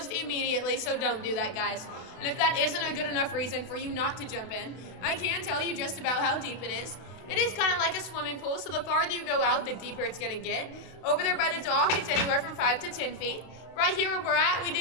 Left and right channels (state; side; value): late; right; 32 ms